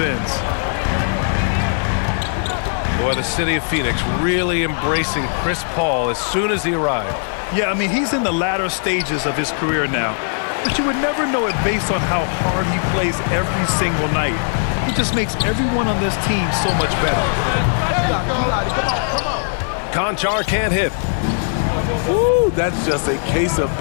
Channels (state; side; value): silent; right; digital silence